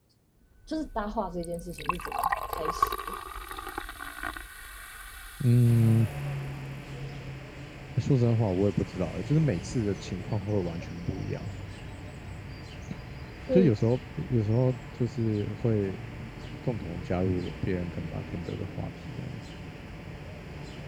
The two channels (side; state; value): both; identical; correlation 1.00